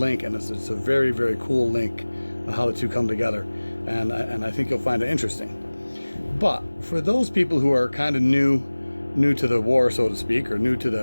and it's a very, very cool link on how the two come together, and I think you'll find it interesting. But for those people who are kind of new to the war, so to speak, or new to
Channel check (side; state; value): both; inverted; correlation -1.00